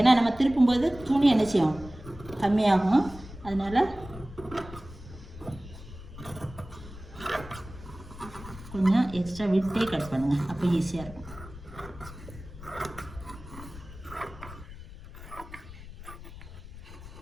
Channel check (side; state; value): left; noise; rumble, 15 dB below the sound